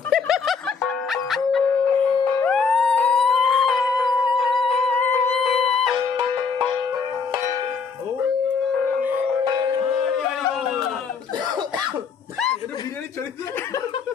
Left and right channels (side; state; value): right; quieter; 5.3 dB